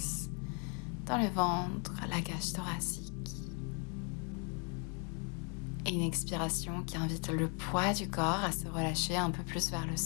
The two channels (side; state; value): right; quieter; 37.1 dB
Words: dans le ventre, la cage thoracique. Et une expiration qui invite le poids du corps à se relâcher un peu plus vers le